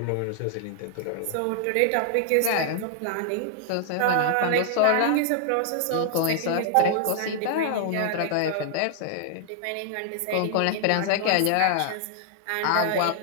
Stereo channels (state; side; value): different; both; correlation -0.01